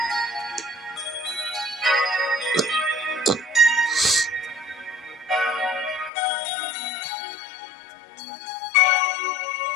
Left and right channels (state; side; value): drops out; right; at 6.1 s